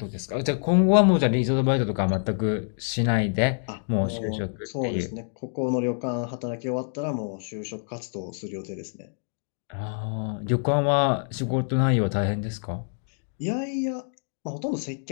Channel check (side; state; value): right; silent; digital silence